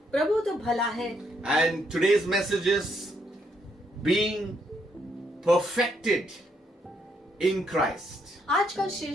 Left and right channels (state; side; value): normal; both; correlation 0.74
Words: प्रभु तो भला है, And today's message is being perfected in Christ. आज का